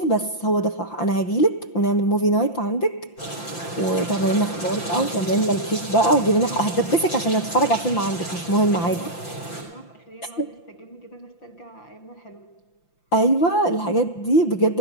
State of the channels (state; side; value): late; right; 5.9 ms